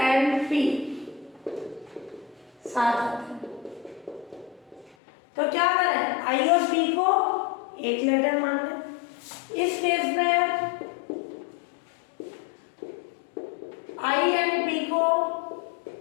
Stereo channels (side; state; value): right; drops out; at 5.0 s